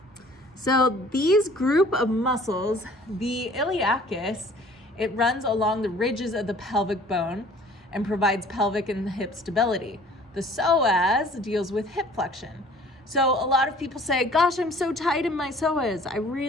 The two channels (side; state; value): both; normal; correlation 0.52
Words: So these group of muscles, the iliacus, it runs along the ridges of the pelvic bone and provides pelvic and hip stability. The psoas deals with hip flexion. So a lot of people say, gosh, I'm so tight in my psoas. I